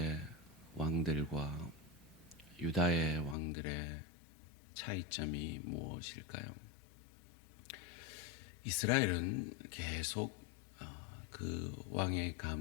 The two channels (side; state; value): right; drops out; at 3.4 s